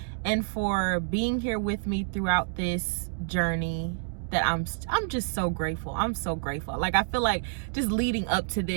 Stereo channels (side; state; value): left; silent; digital silence